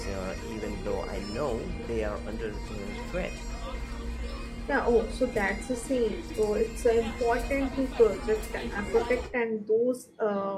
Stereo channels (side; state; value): both; identical; correlation 1.00